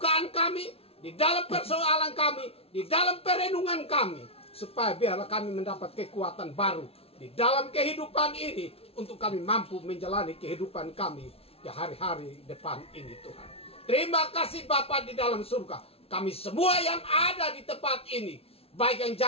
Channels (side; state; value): right; late; 0.28 ms